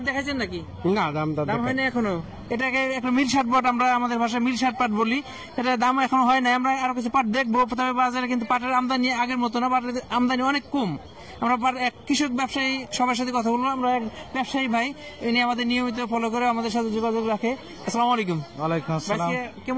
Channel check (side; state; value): both; identical; correlation 1.00